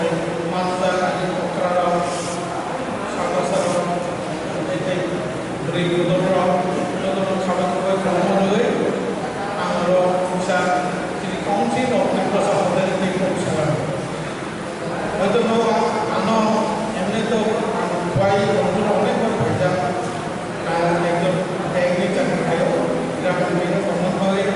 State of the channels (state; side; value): identical; both; correlation 1.00